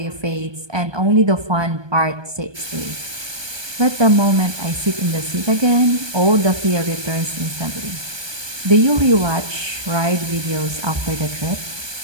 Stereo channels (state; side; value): late; left; 1.2 ms